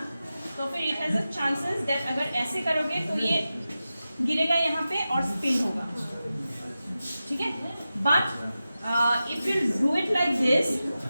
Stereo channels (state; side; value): inverted; both; correlation -0.93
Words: तो फिर it has a chances that अगर ऐसे करोगे तो ये गिरेगा यहाँ पे और स्पिन होगा, ठीक है? But if you do it like this